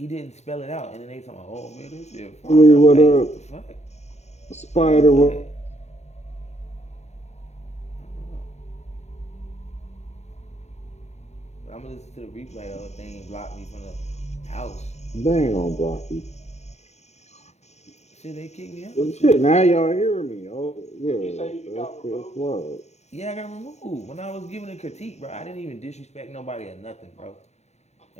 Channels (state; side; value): late; right; 0.32 ms